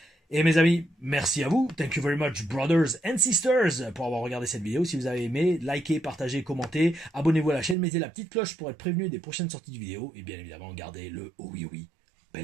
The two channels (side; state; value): left; drops out; at 7.8 s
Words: Et mes amis, merci à vous. Thank you very much, brothers and sisters, pour avoir regardé cette vidéo. Si vous avez aimé, likez, partagez, commentez, abonnez-vous à la chaîne, mettez la petite cloche pour être prévenu des prochaines sorties de vidéos. Et bien évidemment, gardez le oh oui,